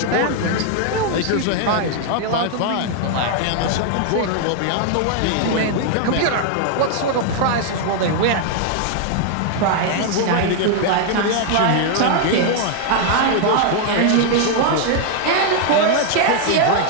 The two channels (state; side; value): different; both; correlation 0.00